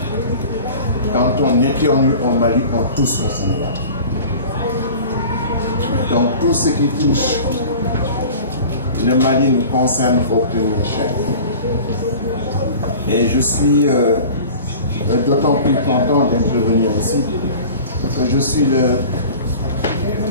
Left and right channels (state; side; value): inverted; both; correlation -0.40